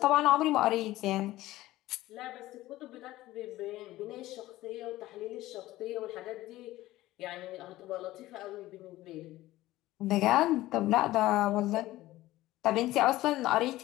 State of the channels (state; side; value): quieter; right; 16.6 dB